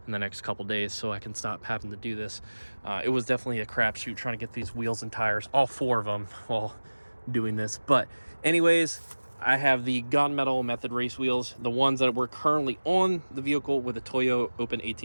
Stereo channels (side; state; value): both; inverted; correlation -1.00